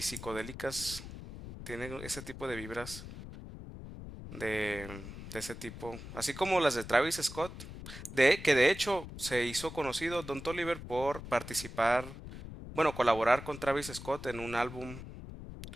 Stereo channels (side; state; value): left; noise; rumble, 12 dB below the sound